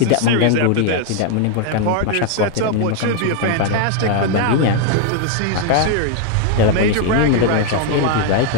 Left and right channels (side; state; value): both; different; correlation 0.01